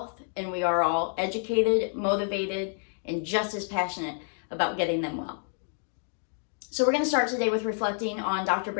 and we are all educated, motivated, and just as passionate about getting them well. So we're going to start today with reflecting on Dr.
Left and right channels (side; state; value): right; silent; 59 dB below the other